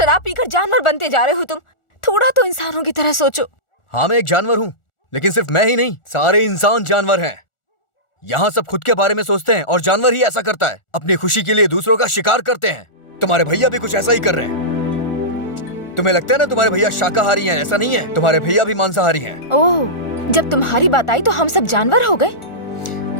पीकर जानवर बनते जा रहे हो तुम। थोड़ा तो इंसानों की तरह सोचो। हाँ मैं एक जानवर हूँ, लेकिन सिर्फ मैं ही नहीं, सारे इंसान जानवर हैं। यहाँ सब खुद के बारे में सोचते हैं और जानवर ही ऐसा करता है, अपनी खुशी के लिए दूसरों का शिकार करते हैं। तुम्हारे भैया भी कुछ ऐसा ही कर रहे हैं। तुम्हें लगता है ना तुम्हारे भैया शाकाहारी हैं, ऐसा नहीं है, तुम्हारे भैया भी मांसाहारी हैं। ओह, जब तुम्हारी बात आई तो हम सब जानवर हो गए।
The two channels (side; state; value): right; late; 1.4 ms